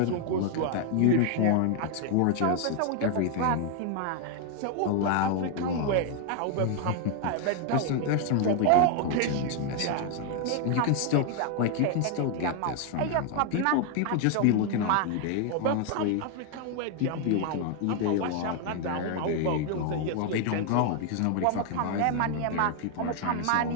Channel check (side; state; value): both; different; correlation 0.00